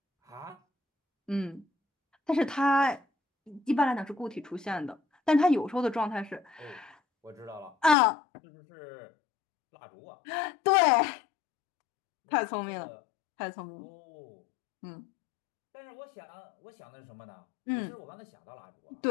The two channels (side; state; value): right; drops out; at 8.0 s